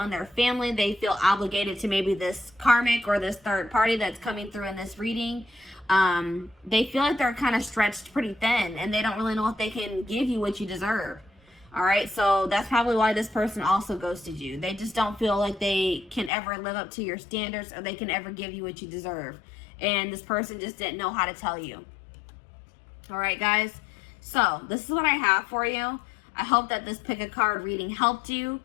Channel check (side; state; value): right; drops out; at 16.3 s